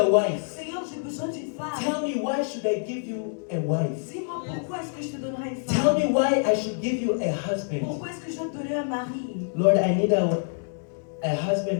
wife. Seigneur, j'ai besoin d'une femme. Tell me, why should I give you a wife? Dis-moi pourquoi est-ce que je te donnerai une Tell femme? me why I should give you a husband. Pourquoi est-ce que je dois te donner un mari? Lord, I need a husband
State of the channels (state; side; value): silent; right; 61 dB below the other